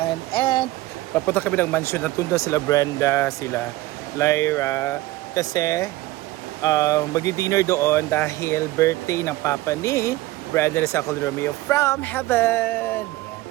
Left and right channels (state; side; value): quieter; left; 17.9 dB